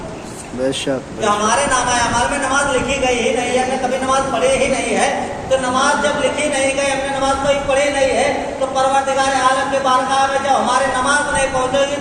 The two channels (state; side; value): identical; both; correlation 1.00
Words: बेशक जो हमारे नामा अमाल में नमाज लिखी गई ही नहीं है, हमने कभी नमाज पढ़ी ही नहीं है, तो नमाज जब लिखी नहीं गई, हमने नमाज कोई पढ़ी नहीं है, तो परवरदिगार आलम के बारगाह में जब हमारे नमाज नहीं पहुंचेगी